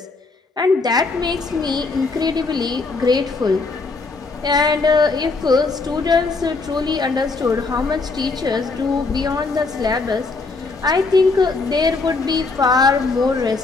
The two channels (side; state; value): right; quieter; 3.9 dB